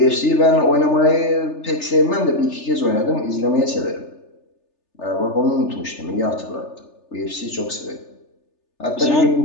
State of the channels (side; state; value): right; late; 3.4 ms